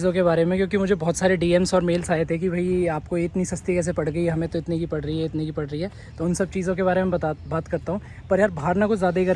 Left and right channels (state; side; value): identical; both; correlation 1.00